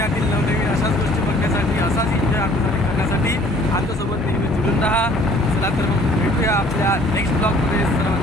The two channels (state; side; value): normal; both; correlation 0.55